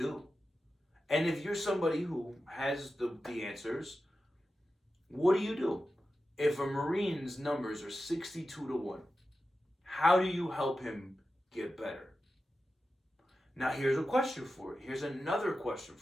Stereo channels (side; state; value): both; normal; correlation 0.92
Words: do? And if you're somebody who has the answers, what do you do? If a Marine's numbers are 62 to 1, how do you help him get better? Now, here's a question for you. Here's another question